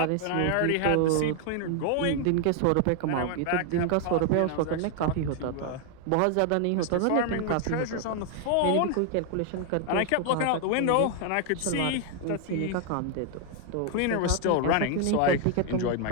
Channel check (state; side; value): different; both; correlation 0.00